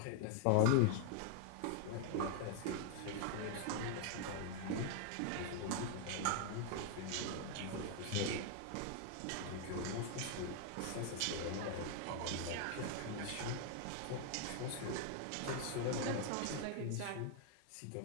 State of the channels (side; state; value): both; different; correlation 0.00